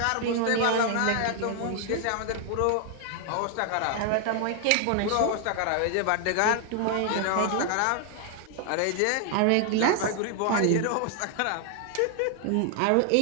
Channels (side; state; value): both; different; correlation 0.00